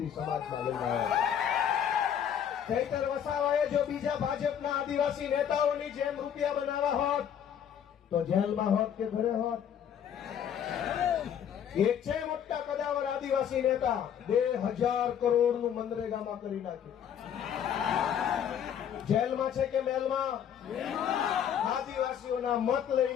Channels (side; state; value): right; quieter; 9.0 dB